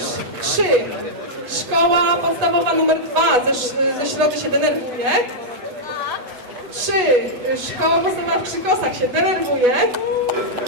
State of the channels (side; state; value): left; late; 8.1 ms